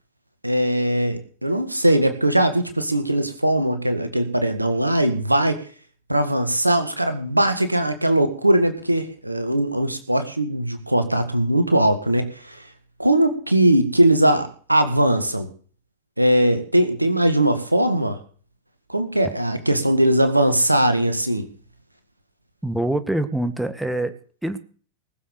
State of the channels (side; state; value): both; inverted; correlation -0.80